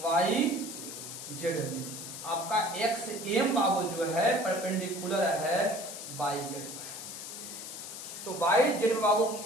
में आपका XM बाबू जो है परपेंडिकुलर है YZ पर। तो YZ में बाबू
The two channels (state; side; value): noise; left; hiss, 9 dB below the sound